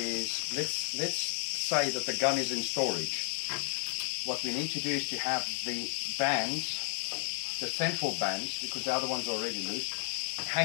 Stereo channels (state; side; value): silent; right; 56 dB below the other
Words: let's say that the gun is in storage. What we need to do is to have the bands, the central bands, because the other ones are already loose,